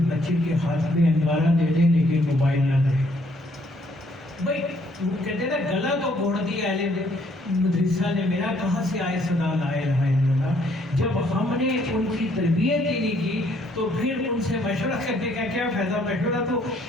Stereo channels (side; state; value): both; normal; correlation 0.66